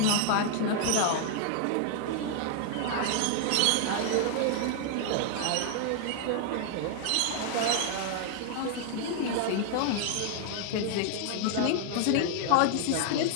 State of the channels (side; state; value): both; different; correlation 0.00